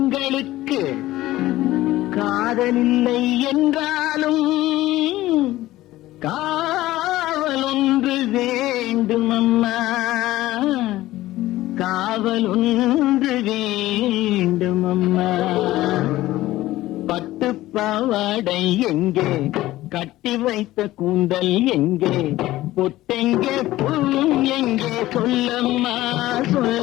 காதலில்லை என்றாலும் காவல் ஒன்று வேண்டும் அம்மா, காவல் ஒன்று வேண்டும் அம்மா. பட்டு பாவாடை எங்கே, கட்டி வைத்த கூந்தல் எங்கே, பொட்டெங்கே புல்லும் எங்கே, சொல்லம்மா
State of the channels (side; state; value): right; quieter; 16.2 dB